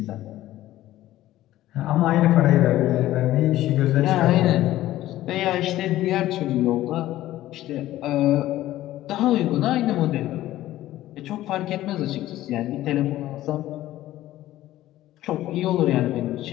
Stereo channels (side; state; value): right; quieter; 14.7 dB